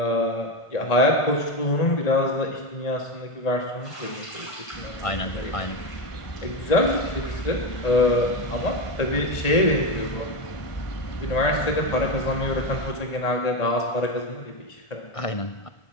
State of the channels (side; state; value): right; late; 1.5 ms